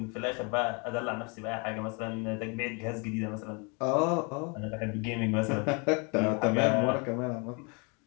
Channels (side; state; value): right; quieter; 33.0 dB